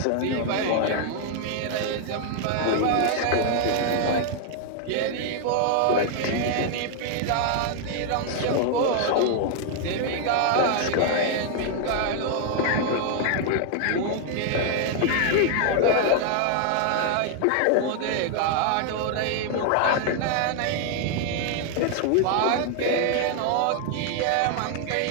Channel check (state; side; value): different; both; correlation 0.00